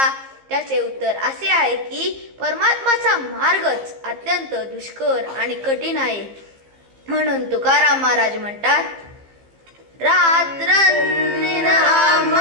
त्याचे उत्तर असे आहे की परमात्माचा मार्गच अत्यंत दुष्कर आणि कठीण आहे. म्हणून तुकाराम महाराज म्हणतात, रात्रंदिन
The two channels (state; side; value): late; left; 15 ms